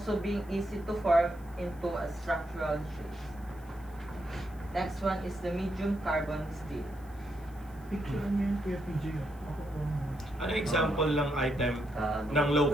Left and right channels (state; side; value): noise; left; hiss, 27 dB below the sound